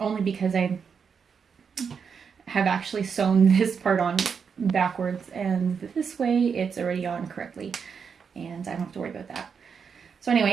because I have actually sewn this part on backwards, and this way it's already on correctly, and I don't have to worry about that. So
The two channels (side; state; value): left; quieter; 6.3 dB